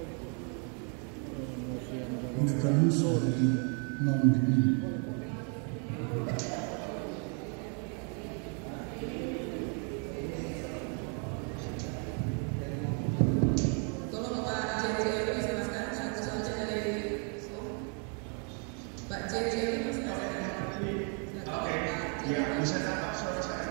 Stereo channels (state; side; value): quieter; left; 39.5 dB